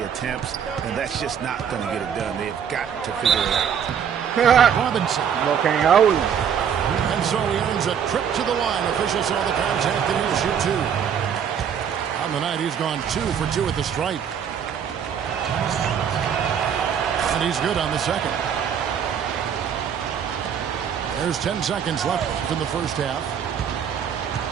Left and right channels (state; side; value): quieter; left; 8.0 dB